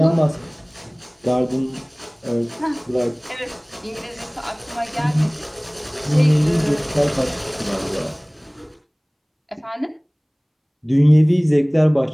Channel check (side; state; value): both; identical; correlation 1.00